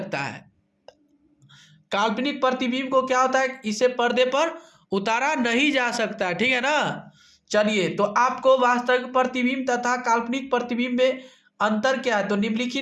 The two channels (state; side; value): identical; both; correlation 1.00